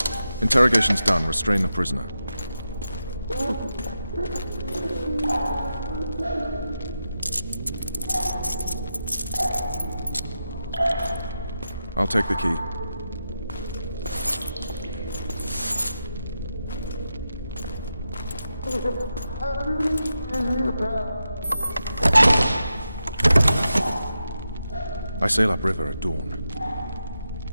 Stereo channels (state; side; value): inverted; both; correlation -0.88